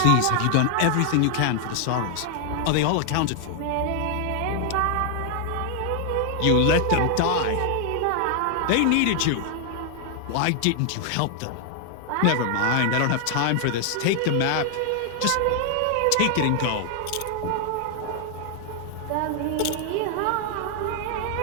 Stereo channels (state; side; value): different; both; correlation 0.00